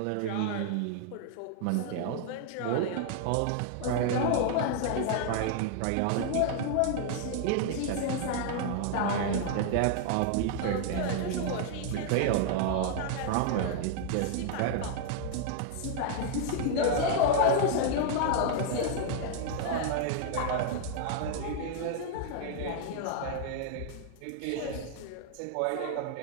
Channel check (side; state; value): both; different; correlation 0.00